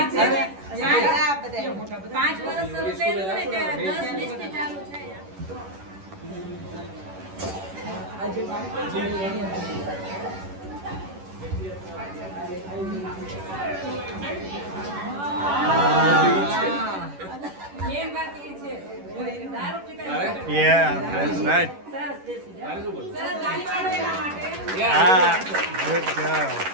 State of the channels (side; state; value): left; late; 11 ms